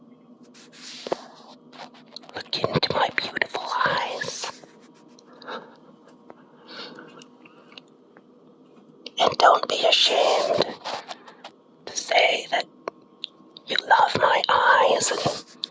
Look into my beautiful eyes. And don't be ashamed to say that you love my eyes and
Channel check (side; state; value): both; identical; correlation 1.00